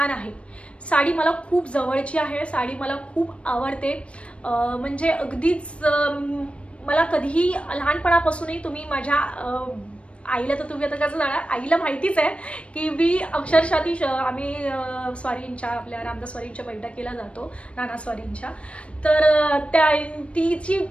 आहे. साडी मला खूप जवळची आहे, साडी मला खूप आवडते. म्हणजे अगदीच मला कधीही लहानपणापासूनही तुम्ही माझ्या आईला, तर तुम्ही आता कसं जाणार, आईला माहितीच आहे की मी अक्षरशः आम्ही स्वारींच्या, आपल्या रामदास स्वारींच्या बैठकीला जातो, नाना स्वारींच्या. तर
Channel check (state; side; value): late; right; 0.061 ms